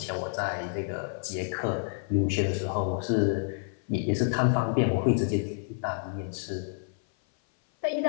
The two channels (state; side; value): silent; right; 56 dB below the other